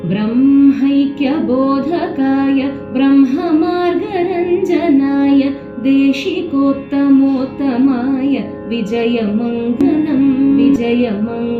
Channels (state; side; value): identical; both; correlation 1.00